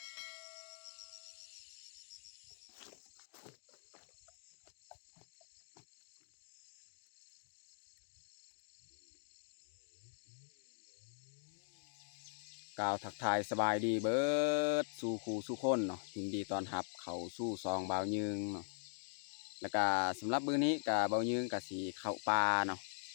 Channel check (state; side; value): silent; right; digital silence